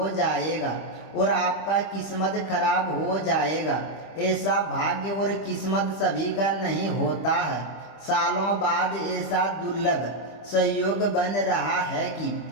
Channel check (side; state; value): right; late; 25 ms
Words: जाएगा और आपका किस्मत खराब हो जाएगा। ऐसा भाग्य और किस्मत सभी का नहीं होता है। सालों बाद ऐसा दुर्लभ संयोग बन रहा है